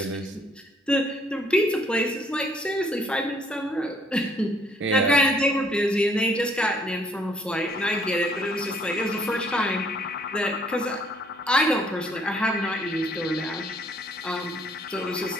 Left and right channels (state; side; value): normal; both; correlation 0.64